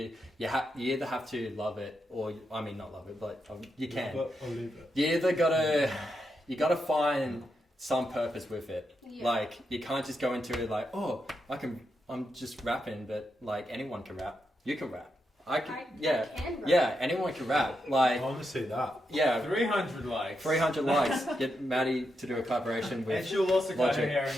have to love it, or I mean not love it, but you can. Love it or leave it. You either gotta find some purpose with it. Yeah. Like you can't just go into it like, oh, I'm just rapping, but like anyone can rap. You can rap. I can rap. Yeah, anyone can rap. Like I want to see that. yeah, 300 likes. 300 likes. Get Maddie to do a collaboration And with. she'll also cut her Logic. hair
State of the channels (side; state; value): both; normal; correlation 0.84